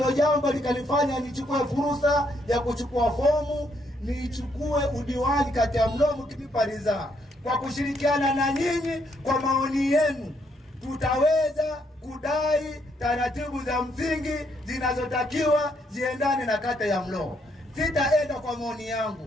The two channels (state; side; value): normal; both; correlation 0.73